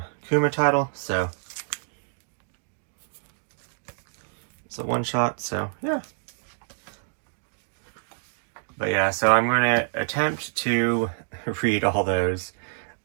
Kuma title, so it's a one-shot, so yeah. But yeah, so I'm going to attempt to read all those.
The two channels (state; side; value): silent; left; digital silence